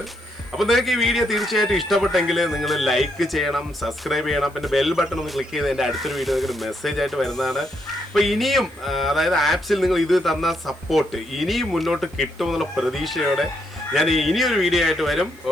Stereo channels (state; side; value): noise; right; hiss, 28 dB below the sound